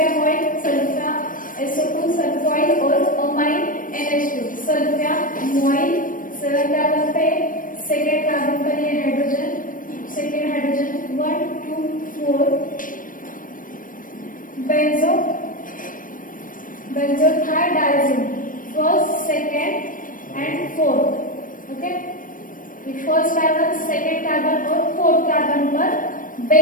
सल्फा SO2 सल्फोइल और अमाइन NH2 सल्फामोइल. 7 कार्बन पे सेकेंड कार्बन पर ये hydrogen, second hydrogen 1 2 4 benzothiadiazine first, second and fourth. Okay, first carbon, second carbon और फोर्थ कार्बन पर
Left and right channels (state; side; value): late; right; 0.39 ms